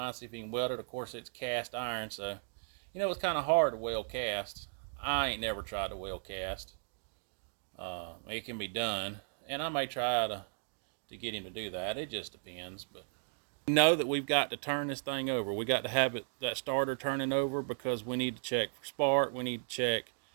see if he can weld it. Of course it's cast iron, so you know it's kind of hard to weld cast. I ain't never tried to weld cast. It can be done, and I may try to get him to do that. It just depends. But we know that we've got to turn this thing over. We got to have that starter turning over because we need to check for spark. We need to check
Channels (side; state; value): left; silent; digital silence